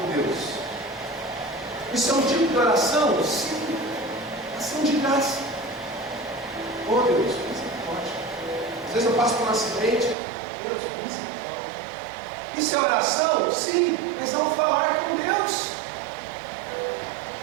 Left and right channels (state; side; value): drops out; left; at 10.2 s